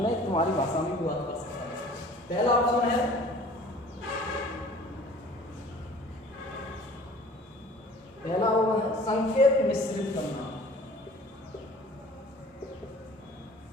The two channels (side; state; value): both; normal; correlation 0.48